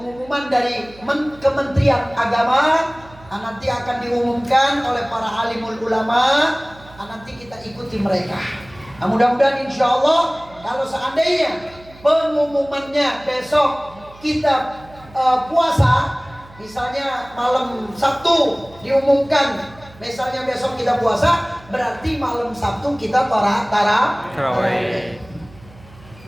dari Kementerian Agama. Nah, nanti akan diumumkan oleh para alimul ulama. Nah, nanti kita ikuti mereka. Nah, mudah-mudahan insya Allah kalau seandainya pengumumannya besok kita puasa, misalnya malam Sabtu diumumkan, misalnya besok kita puasa, berarti malam Sabtu kita tarawih.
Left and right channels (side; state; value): right; noise; hum, 23 dB below the sound